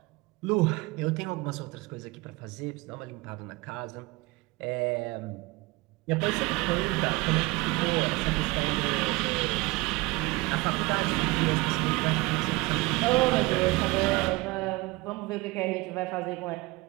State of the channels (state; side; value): quieter; left; 22.8 dB